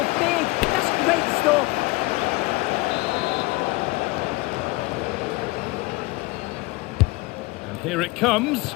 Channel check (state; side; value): quieter; right; 22.7 dB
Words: big. That's great stuff. Here it comes.